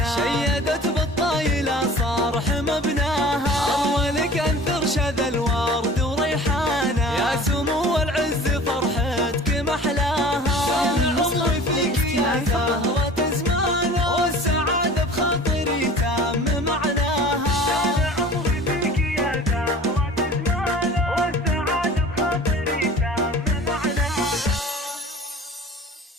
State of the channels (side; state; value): both; normal; correlation 0.42